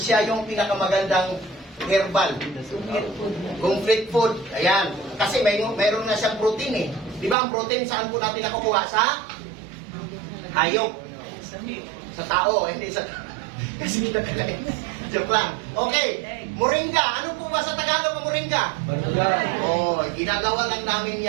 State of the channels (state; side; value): drops out; left; at 7.4 s